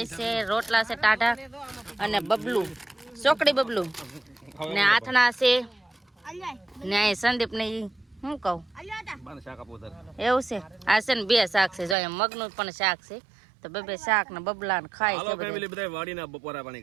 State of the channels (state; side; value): drops out; left; at 12.0 s